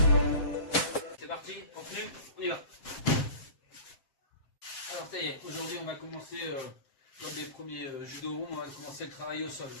C'est parti, continue, on y va. Alors ça y est, aujourd'hui on va commencer, comme les premiers judo rooms, on va commencer le travail au sol.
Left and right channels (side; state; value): right; late; 7.5 ms